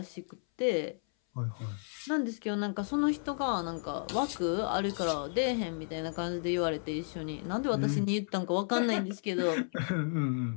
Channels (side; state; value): right; silent; 56 dB below the other